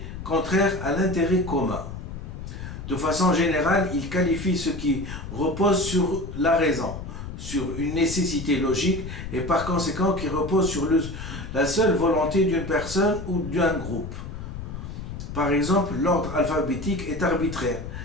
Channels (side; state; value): left; noise; rumble, 9 dB below the sound